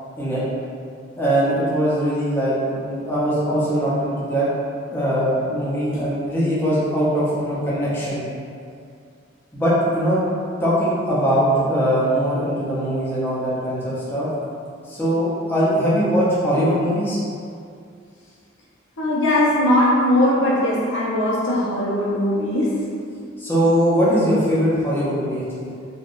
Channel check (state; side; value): normal; both; correlation 0.46